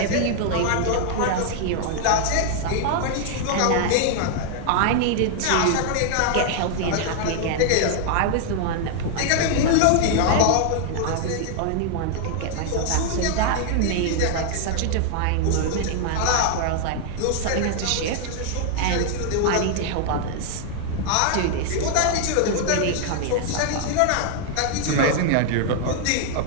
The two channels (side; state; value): both; different; correlation 0.00